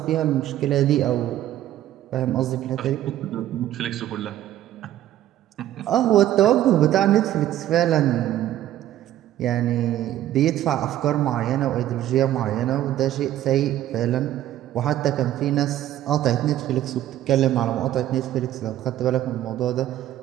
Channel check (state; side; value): quieter; left; 12.8 dB